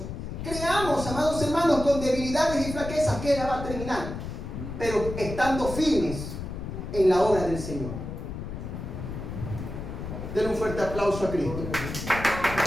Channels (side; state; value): left; noise; rumble, 7 dB below the sound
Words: creamos, amados hermanos, con debilidades y flaquezas, que Él la va a terminar, pero estando firmes en la obra del Señor. Denle un fuerte aplauso a Cristo.